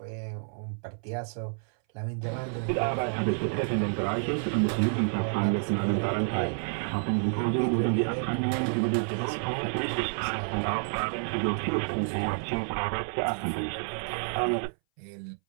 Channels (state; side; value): silent; left; 58 dB below the other